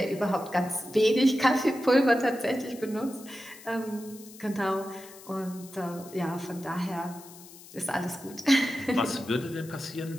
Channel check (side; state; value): left; noise; hiss, 19 dB below the sound